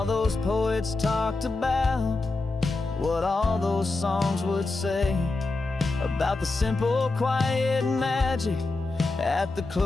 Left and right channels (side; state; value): right; quieter; 3.3 dB